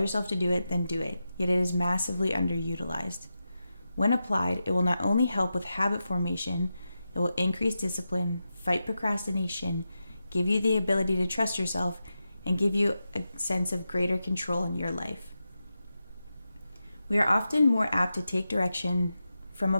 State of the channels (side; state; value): both; inverted; correlation -0.90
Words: to do it, then do it. Yet it is massively underutilized. When applied, it will not only help with habit formation, it will increase discipline, fight procrastination, give you the ability to trust yourself, and give you a sense of greater control in your life. We are often more apt to take direction from a